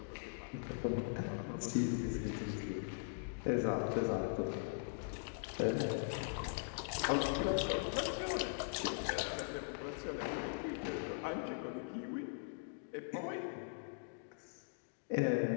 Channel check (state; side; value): silent; right; digital silence